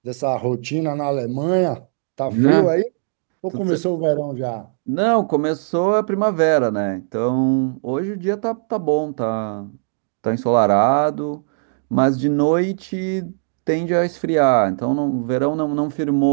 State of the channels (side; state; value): left; silent; digital silence